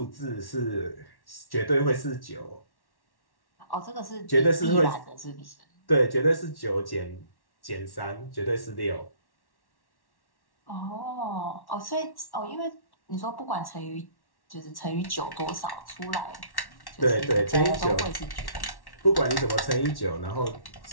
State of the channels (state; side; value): late; right; 1.1 ms